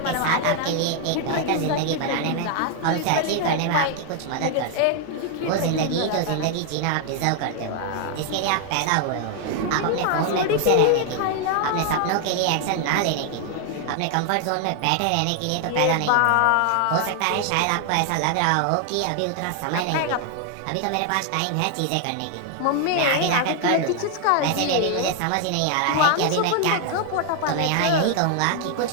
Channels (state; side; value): different; both; correlation 0.00